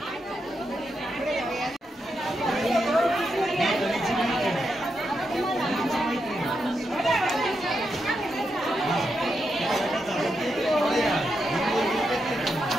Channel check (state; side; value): normal; both; correlation 0.84